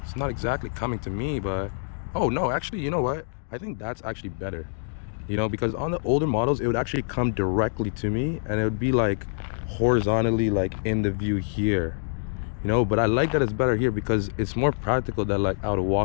It's not exactly coming to me, but oh no, actually, you know what? I think that's actually better. You know, because on the older models, it would actually come directly to me and it would be like horizontally like in the view here. You know, but I like that it's better here because it's more practical that like I would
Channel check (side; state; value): right; silent; digital silence